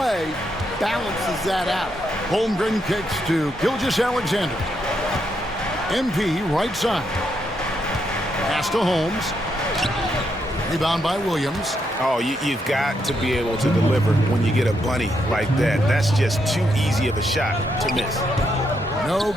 balances that out. Holmgren kicks to Gilgeous-Alexander. MP right side. Pass to Holmes. Rebound by Williams. Oh, you've got to be able to deliver when you get a bunny like that. That's just too easy of a shot to miss. No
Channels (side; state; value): both; normal; correlation 0.79